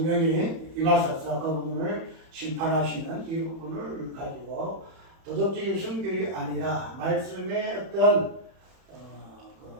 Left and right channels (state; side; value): late; left; 31 ms